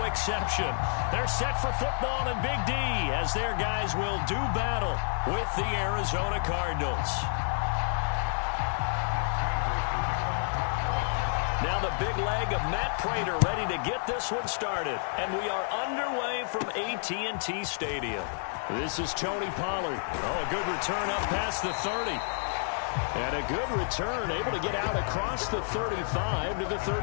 exception. They're set for football in Big D as their guys will do battle with the Arizona Cardinals. Now the big leg of Matt Prater ready to get this one started. And we are underway from AT&T Stadium. This is Tony Pollard. Oh, a good return up past the 30. And a good return, able to get out across the 35 to the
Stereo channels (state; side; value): silent; right; digital silence